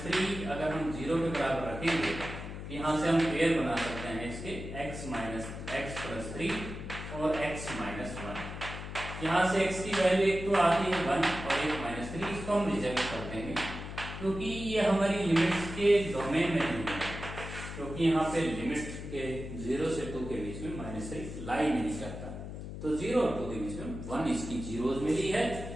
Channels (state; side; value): noise; left; hum, 8 dB below the sound